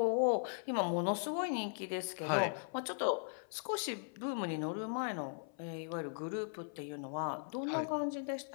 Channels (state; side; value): silent; right; 52 dB below the other